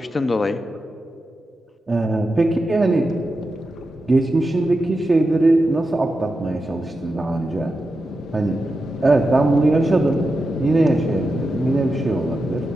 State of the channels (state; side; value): normal; both; correlation 0.90